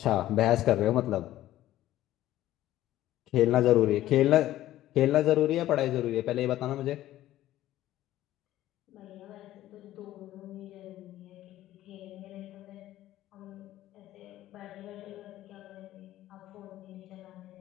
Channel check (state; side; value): quieter; right; 14.2 dB